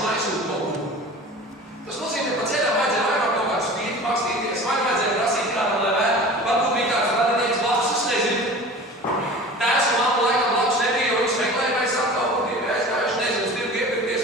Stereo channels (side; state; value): both; normal; correlation 0.39